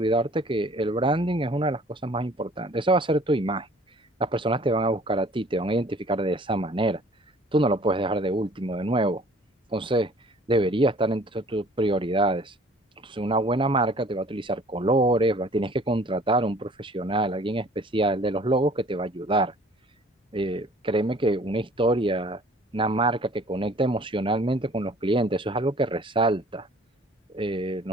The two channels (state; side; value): normal; both; correlation 0.52